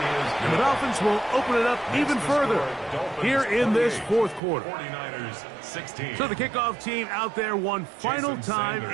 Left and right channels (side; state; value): left; drops out; at 4.4 s